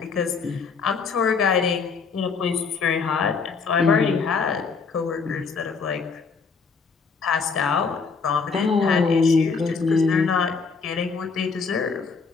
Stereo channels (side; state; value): right; quieter; 5.1 dB